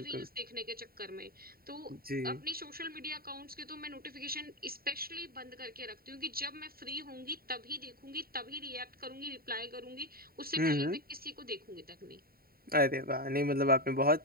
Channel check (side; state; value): left; late; 0.43 ms